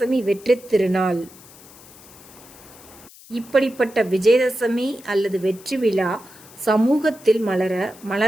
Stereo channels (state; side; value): noise; left; hiss, 22 dB below the sound